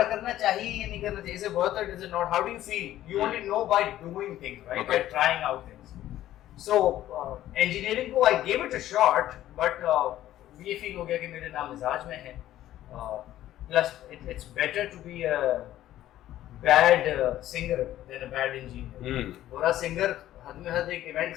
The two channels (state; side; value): quieter; right; 13.4 dB